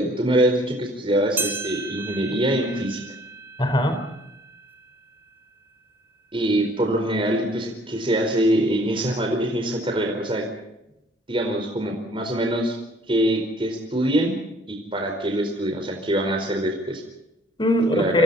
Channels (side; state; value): both; normal; correlation 0.57